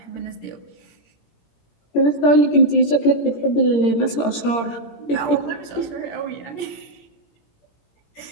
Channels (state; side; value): late; right; 17 ms